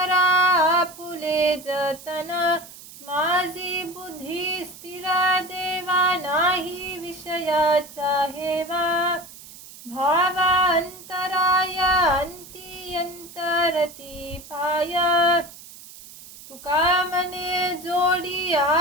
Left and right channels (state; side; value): noise; right; hiss, 18 dB below the sound